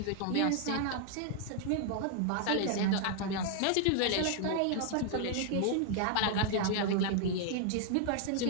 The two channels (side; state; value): both; different; correlation 0.00